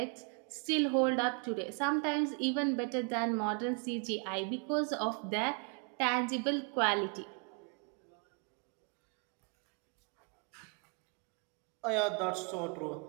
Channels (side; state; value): left; quieter; 37.5 dB